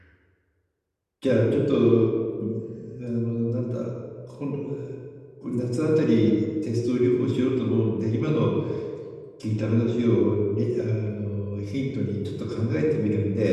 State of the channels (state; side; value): identical; both; correlation 1.00